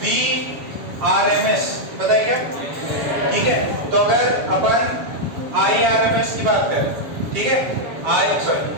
VRMS बताइए क्या? ठीक है, तो अगर अपन IRMS की बात करें, ठीक है, IRMS,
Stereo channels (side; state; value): left; late; 7.2 ms